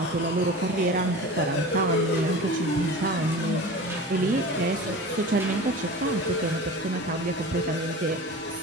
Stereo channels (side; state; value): both; normal; correlation 0.35